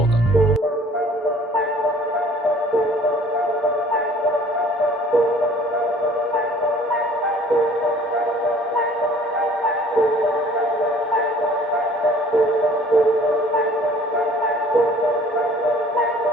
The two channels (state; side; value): normal; both; correlation 0.52